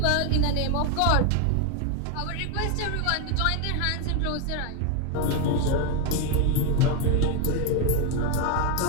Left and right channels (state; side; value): different; both; correlation 0.01